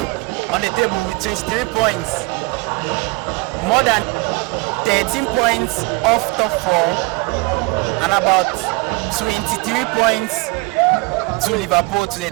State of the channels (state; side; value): quieter; left; 26.5 dB